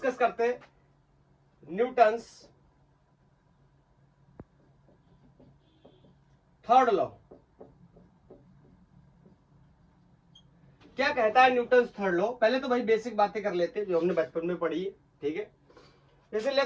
करते हैं न्यूटन्स थर्ड लॉ। क्या कहता है न्यूटन्स थर्ड लॉ? पहले तो भाई बेसिक बातें कर लेते हैं जो हमने बचपन में पढ़ी है। ठीक है, जैसे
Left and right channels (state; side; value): identical; both; correlation 1.00